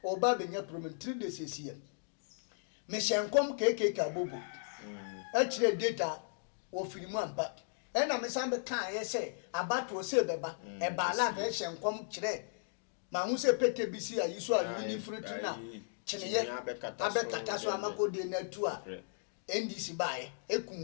oba benya problem 3 days esie me hye nkom keke ka bobo a kire data wo firimu ampa ena me sambe kan ye se abato se beba e ba la be hye nkom kire ma hu se pete bisi ayi so a ni fruit na chineye abekata so amakode na tu a NDC bae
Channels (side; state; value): right; silent; digital silence